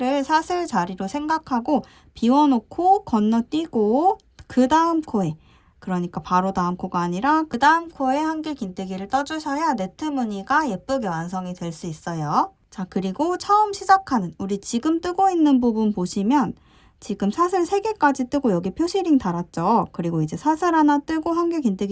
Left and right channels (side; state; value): both; identical; correlation 1.00